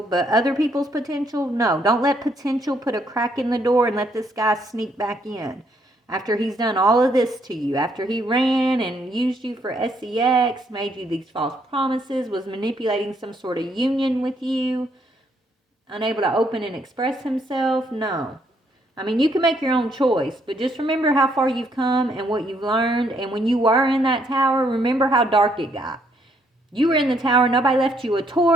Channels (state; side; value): normal; both; correlation 0.71